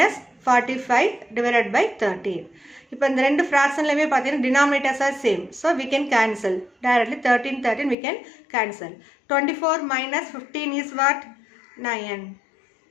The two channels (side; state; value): right; drops out; at 8.0 s